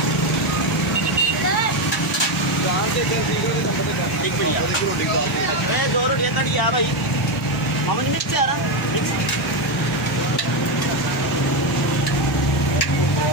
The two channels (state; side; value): normal; both; correlation 0.09